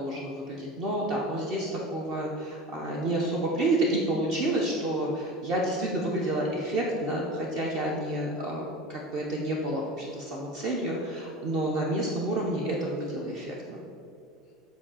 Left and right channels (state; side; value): normal; both; correlation 0.33